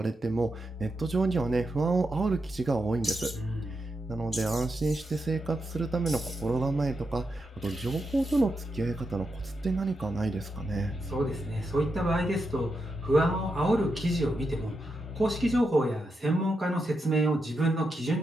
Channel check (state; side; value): normal; both; correlation 0.85